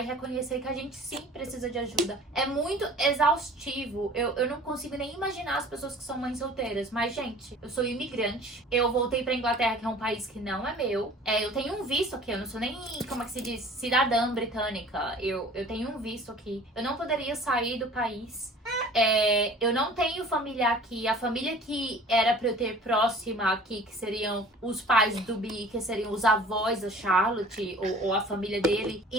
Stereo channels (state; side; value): normal; both; correlation 0.47